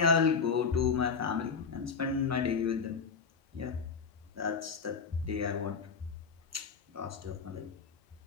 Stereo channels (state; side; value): quieter; right; 5.5 dB